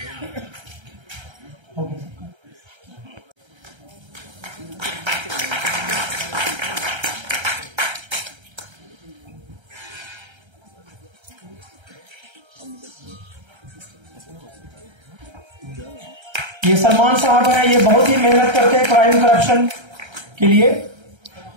ये सलमान साहब हैं, ये बहुत ही मेहनत करते हैं क्राइम करप्शन के लिए।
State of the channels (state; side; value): late; left; 1.3 ms